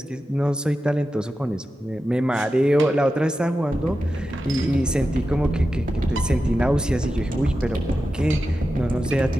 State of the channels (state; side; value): normal; both; correlation 0.91